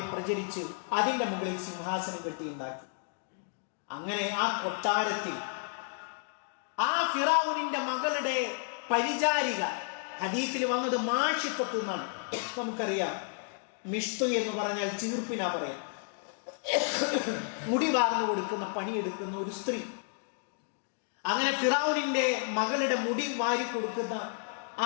പ്രചരിച്ച് അതിന്റെ മുകളിൽ സിംഹാസനം കെട്ടിയുണ്ടാക്കി. അങ്ങനെ ആ കൊട്ടാരത്തിൽ ആ ഫിറഔനിന്റെ മകളുടെ പരിചാരിക, ഹദീസിൽ വന്നത് മാഷിഖത്ത് എന്നാണ്. നമുക്കറിയാം, മിഷ്തു എന്ന് പറഞ്ഞാൽ ചീർപ്പിനാ പറയാം. മുടി വാർന്നു കൊടുക്കുന്ന, പണിയെടുക്കുന്ന ഒരു സ്ത്രീ. അങ്ങനെ ഫിറഔനിന്റെ മകളുടെ മുടി വാരി കൊടുക്കുന്ന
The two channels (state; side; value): silent; right; 57 dB below the other